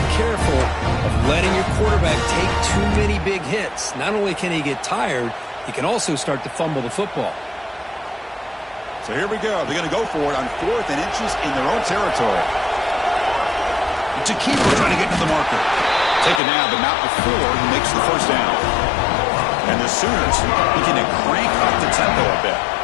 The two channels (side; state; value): right; drops out; at 16.4 s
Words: careful of letting your quarterback take too many big hits. Not only can he get tired, he can also start to fumble the football. So here we go. They're going to go for it on 4th and inches in their own territory. It's a keeper trying to get to the marker. Taken down, but not before he makes the 1st down. And the Sooners looking to crank up the tempo a bit.